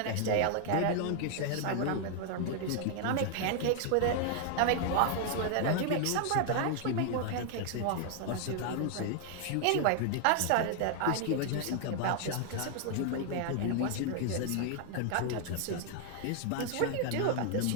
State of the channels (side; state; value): both; different; correlation 0.00